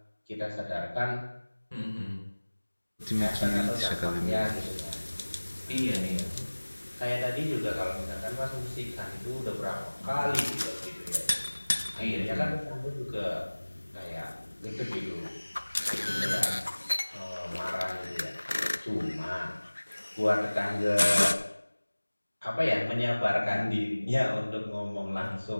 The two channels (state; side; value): inverted; both; correlation -1.00